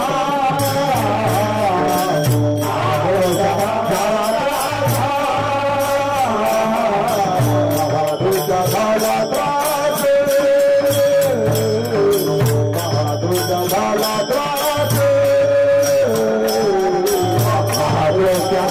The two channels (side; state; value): both; identical; correlation 1.00